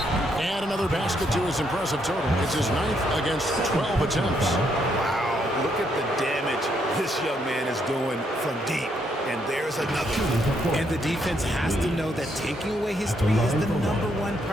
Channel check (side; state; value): both; normal; correlation 0.74